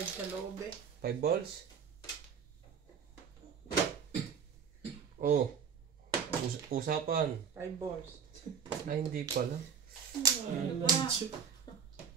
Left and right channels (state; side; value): quieter; left; 6.9 dB